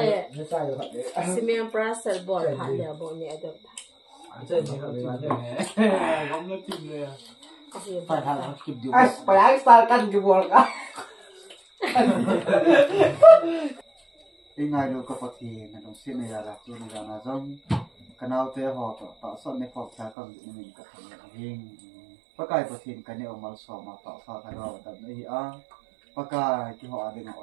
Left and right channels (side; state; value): left; drops out; at 20.1 s